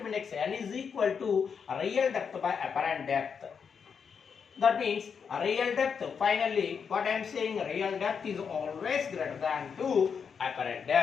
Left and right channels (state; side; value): quieter; right; 6.4 dB